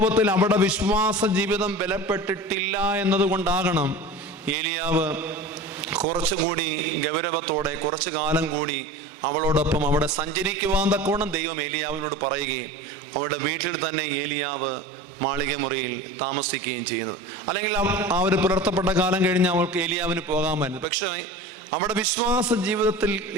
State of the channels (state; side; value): normal; both; correlation 0.35